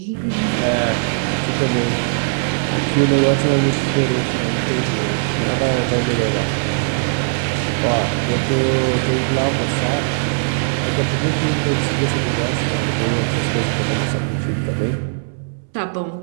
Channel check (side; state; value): left; silent; 66 dB below the other